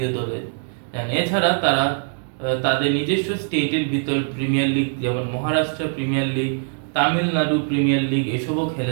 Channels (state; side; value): silent; left; digital silence